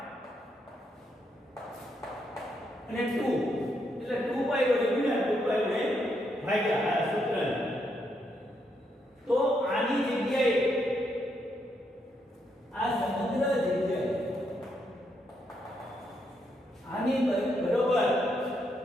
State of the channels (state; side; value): normal; both; correlation 0.78